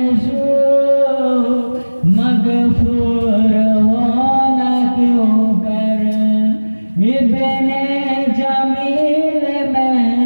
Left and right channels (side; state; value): both; inverted; correlation -1.00